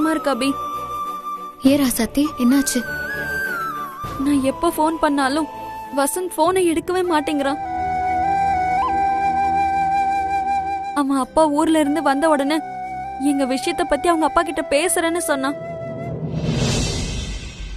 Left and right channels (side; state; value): both; identical; correlation 1.00